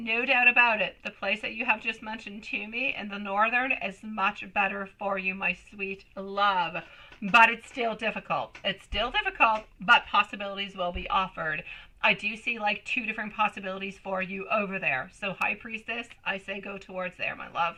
doubt about it. The place that you have just mentioned to me in the Northern is much better for you, my sweet love. But it's still difficult. It's still difficult, but possibilities will be offered. I do see like 2 different possibilities for you over there. So High Priestess, I say go towards there, my love.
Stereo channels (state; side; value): identical; both; correlation 1.00